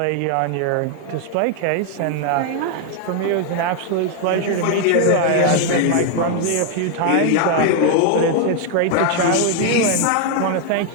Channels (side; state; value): both; different; correlation 0.00